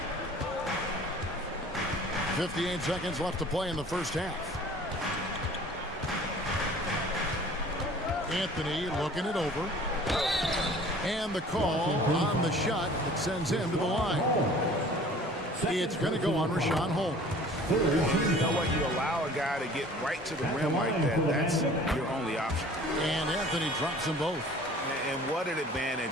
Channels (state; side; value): normal; both; correlation 0.48